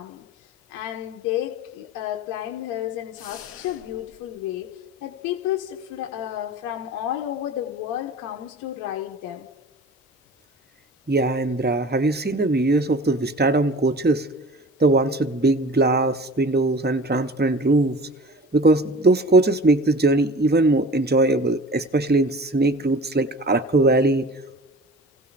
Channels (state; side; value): normal; both; correlation 0.40